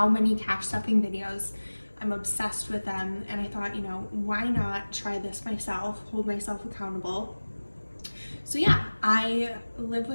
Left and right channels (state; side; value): inverted; both; correlation -1.00